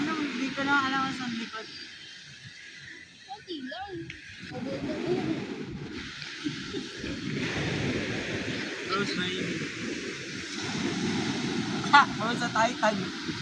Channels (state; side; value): identical; both; correlation 1.00